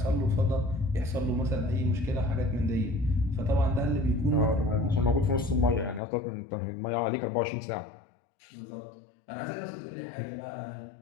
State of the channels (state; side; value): drops out; right; at 6.0 s